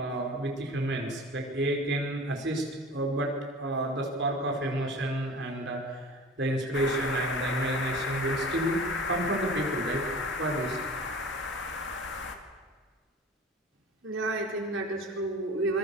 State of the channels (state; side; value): normal; both; correlation 0.39